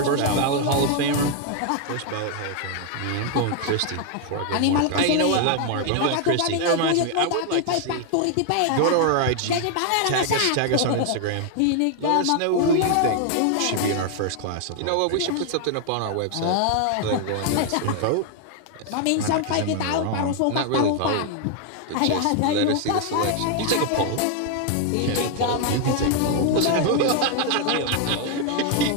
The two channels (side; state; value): both; different; correlation 0.00